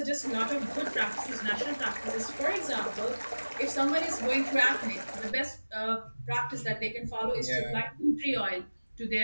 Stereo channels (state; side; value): inverted; both; correlation -1.00